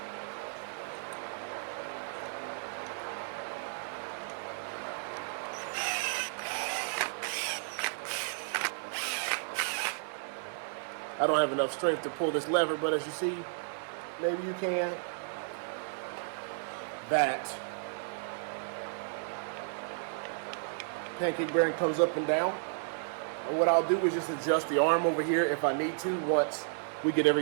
I don't have enough strength to pull this lever, but as you see, maybe you can. That pancake bearing comes up and down. And what I'll do is just adjust the arm over here if I need to once we get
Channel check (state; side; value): silent; left; digital silence